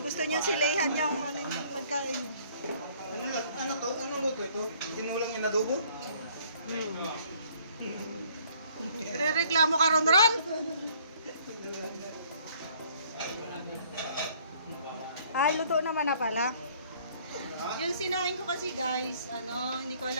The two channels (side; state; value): both; inverted; correlation -0.59